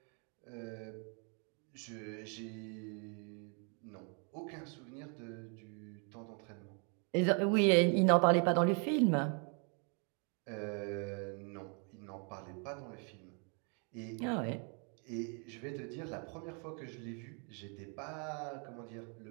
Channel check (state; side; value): quieter; left; 38.5 dB